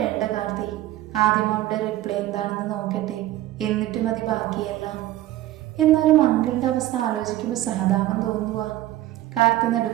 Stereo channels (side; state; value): left; quieter; 14.9 dB